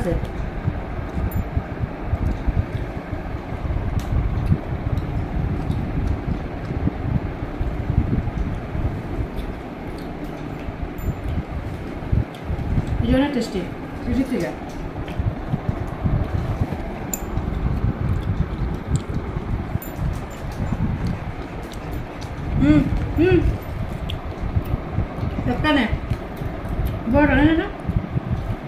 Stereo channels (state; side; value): identical; both; correlation 1.00